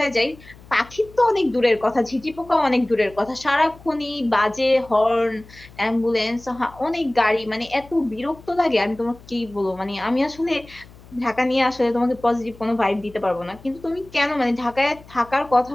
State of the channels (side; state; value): left; noise; hum, 22 dB below the sound